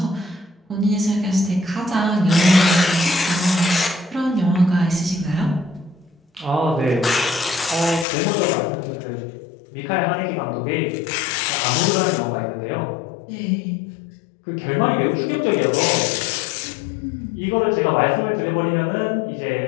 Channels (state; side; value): drops out; right; at 8.1 s